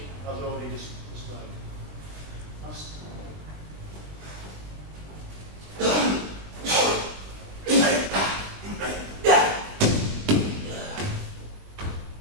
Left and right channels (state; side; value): late; left; 20 ms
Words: as already described.